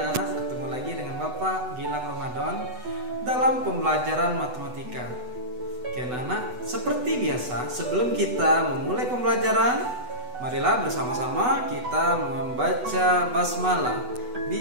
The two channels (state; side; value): late; left; 8.1 ms